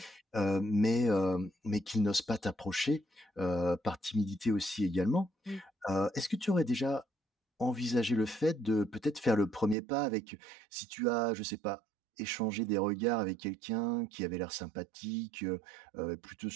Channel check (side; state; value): left; drops out; at 9.8 s